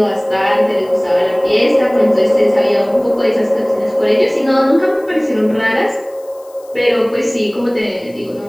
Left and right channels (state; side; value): noise; left; hiss, 28 dB below the sound